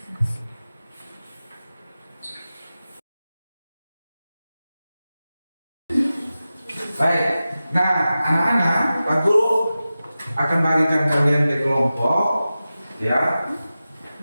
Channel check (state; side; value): inverted; both; correlation -0.94